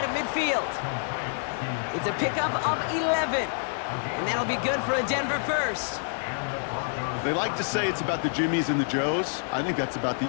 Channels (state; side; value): silent; right; digital silence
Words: of midfield. It's a pickup of 11. And that'll be good for a Denver first. They like to say it's about the Jimmies and the Joes. I think that's about